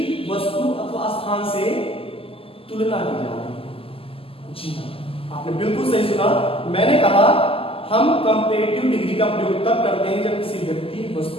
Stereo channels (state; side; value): late; right; 0.27 ms